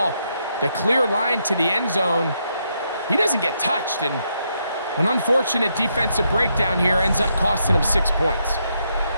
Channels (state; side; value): inverted; both; correlation -0.78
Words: the clear line to the end zone, he doesn't get touched, and an unfortunate defensive breakdown here ends up costing him 6 points.